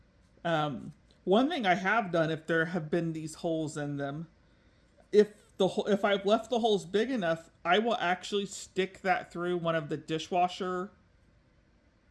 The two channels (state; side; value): identical; both; correlation 1.00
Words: One thing I have done, if there have been these holes in them, if I've left the holes big enough, I will actually stick that through one of the dishwasher,